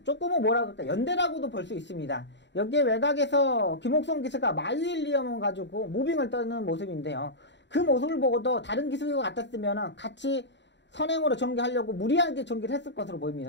조금은 뭐라 그럴까, 연대라고도 볼 수 있습니다. 여기에 외곽에서 김옥성 기수가 마유일리엄을 가지고 무빙을 떠는 모습인데요. 그 모습을 보고도 다른 기수가 같았으면 같이 선행으로 전개하려고 무리하게 전개를 했을 것으로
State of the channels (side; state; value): right; late; 0.52 ms